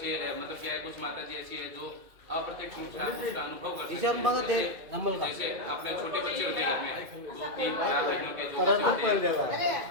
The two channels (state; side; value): late; left; 2.2 ms